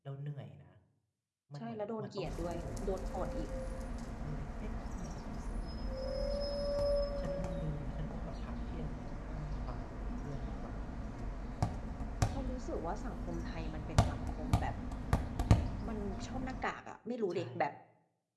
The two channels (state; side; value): identical; both; correlation 1.00